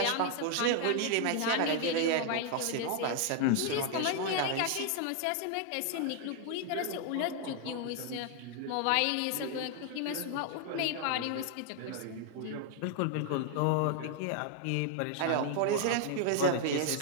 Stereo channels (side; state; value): both; different; correlation 0.00